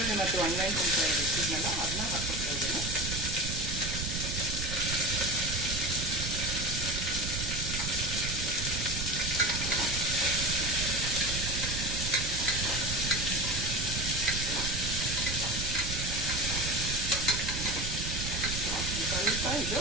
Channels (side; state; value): right; noise; rumble, 4 dB below the sound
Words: ಮತ್ತು ಒಣಮೆಣಸಿನ್ಕಾಯಿ ಇಟ್ಟಿದ್ನಲ್ಲ ಅದನ್ನ ಹಾಕ್ಕೊಳ್ತಾ ಇದ್ದೀನಿ. ಸ್ವಲ್ಪ ಇದು